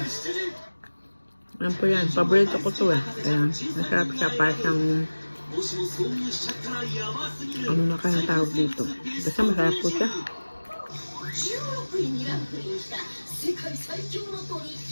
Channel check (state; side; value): inverted; both; correlation -1.00